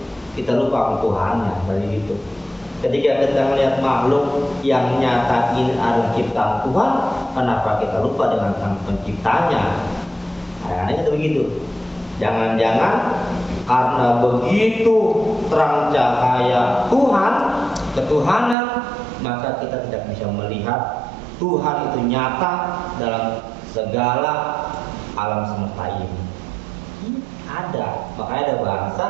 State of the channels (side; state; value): left; drops out; at 18.6 s